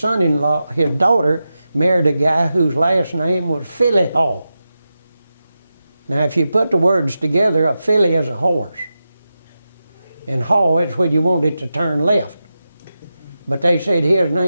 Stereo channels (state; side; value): inverted; both; correlation -0.91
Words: his daughter, married a guy whose last name was Philly Hall. Now, if you put the words together, a filly is a horse. And haw is when you want it to turn left. But they said his